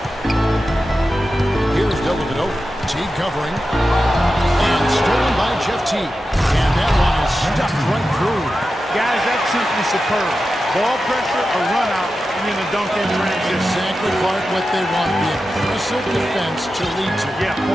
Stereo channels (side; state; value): both; normal; correlation 0.91